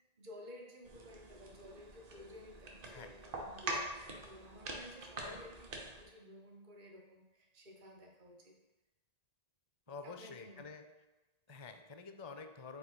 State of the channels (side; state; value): left; late; 1.8 ms